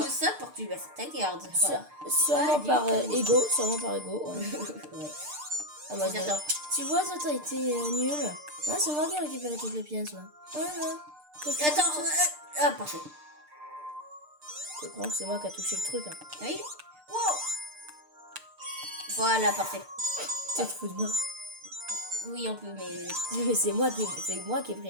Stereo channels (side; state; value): left; late; 6.7 ms